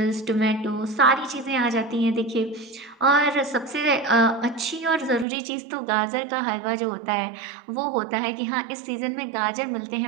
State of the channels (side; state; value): left; drops out; at 5.2 s